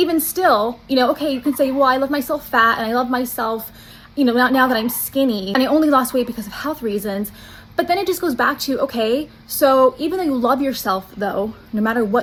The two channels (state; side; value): identical; both; correlation 1.00